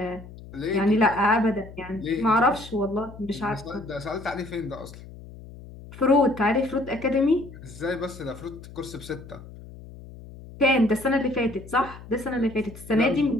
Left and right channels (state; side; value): noise; left; hum, 16 dB below the sound